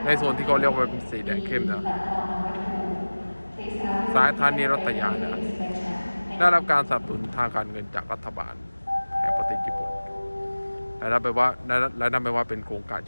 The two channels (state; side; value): inverted; both; correlation -1.00